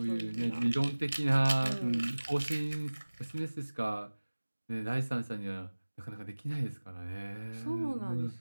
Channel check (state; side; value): inverted; both; correlation -1.00